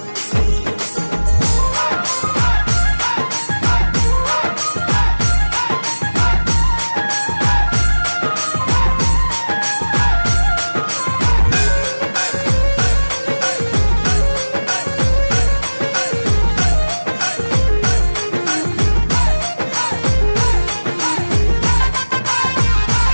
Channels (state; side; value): inverted; both; correlation -1.00